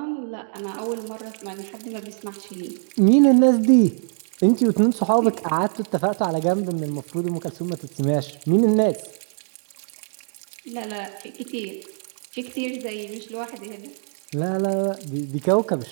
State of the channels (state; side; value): silent; left; 61 dB below the other